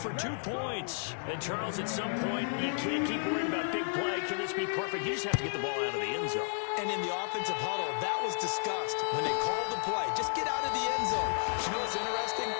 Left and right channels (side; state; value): right; silent; 56 dB below the other